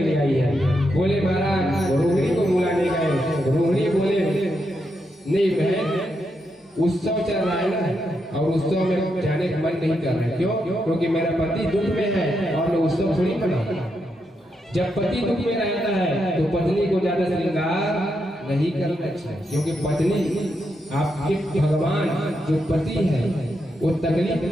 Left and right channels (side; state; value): both; normal; correlation 0.83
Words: लिए आई है। बोले महाराज रोहिणी को बुलाने गए। रोहिणी बोले नहीं बहन उत्सव चल रहा है ना और उत्सव में जाने का मन नहीं कर रहा है। क्यों? क्योंकि मेरा पति दुख में है और मैं उत्सव थोड़ी मनाऊं। जब पति दुख में रहता है तो पत्नी को ज्यादा श्रृंगार नहीं करना चाहिए, क्योंकि पत्नी आपके भगवान जो पति है वो तकलीफ